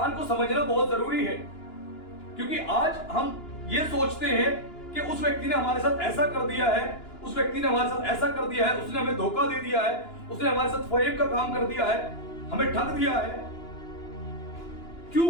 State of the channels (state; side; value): late; right; 2.9 ms